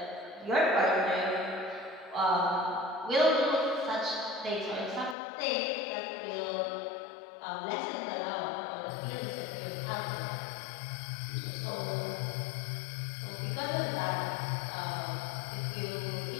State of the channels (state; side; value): drops out; right; at 5.2 s